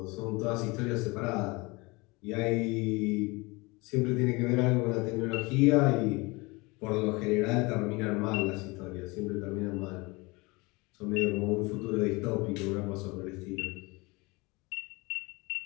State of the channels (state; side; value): quieter; right; 25.1 dB